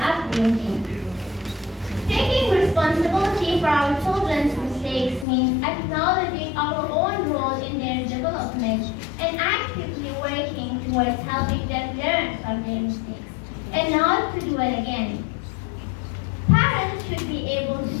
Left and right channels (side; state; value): right; drops out; at 5.2 s